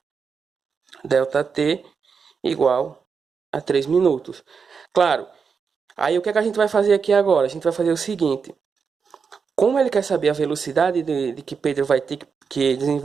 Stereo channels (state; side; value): quieter; left; 5.8 dB